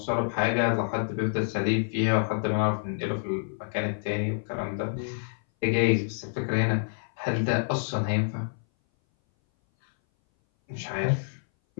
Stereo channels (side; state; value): right; silent; 58 dB below the other